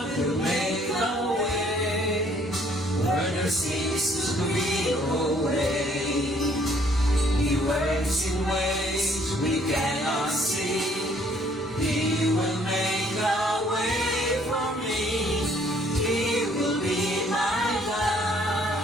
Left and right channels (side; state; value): both; normal; correlation 0.63